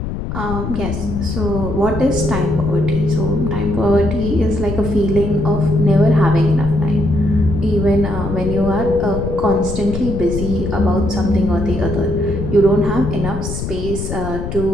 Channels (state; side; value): noise; left; rumble, 6 dB below the sound